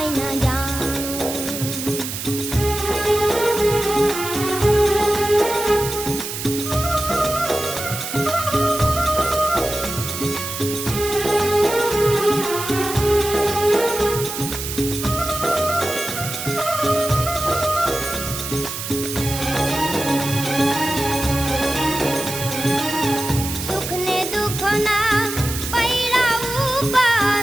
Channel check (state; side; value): noise; right; hiss, 6 dB below the sound